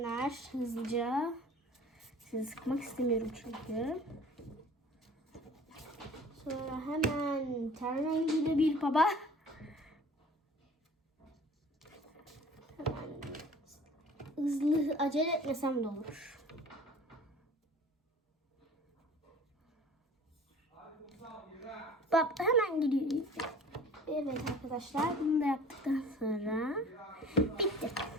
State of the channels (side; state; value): both; normal; correlation 0.46